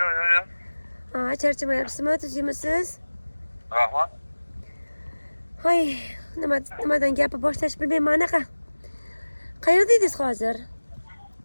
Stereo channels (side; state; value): both; inverted; correlation -1.00